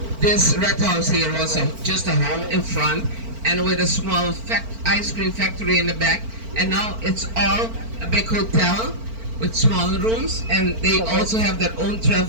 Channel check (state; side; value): late; left; 4.4 ms